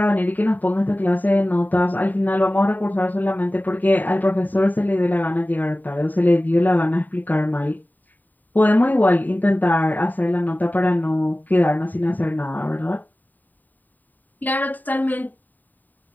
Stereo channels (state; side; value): late; right; 0.087 ms